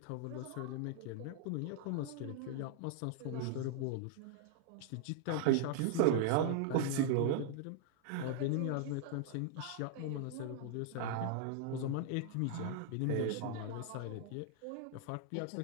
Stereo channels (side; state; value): both; different; correlation -0.01